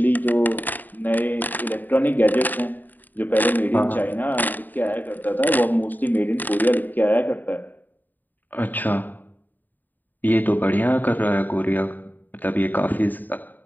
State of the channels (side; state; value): right; late; 0.087 ms